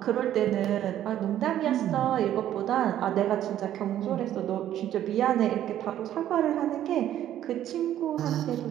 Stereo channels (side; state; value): left; quieter; 11.7 dB